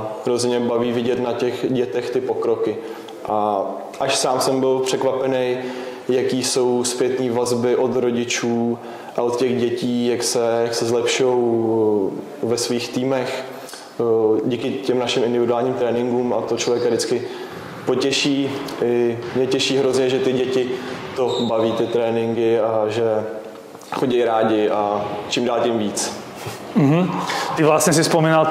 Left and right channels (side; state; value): both; identical; correlation 1.00